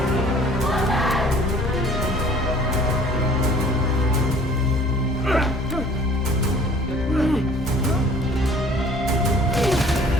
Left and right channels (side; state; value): both; normal; correlation 0.51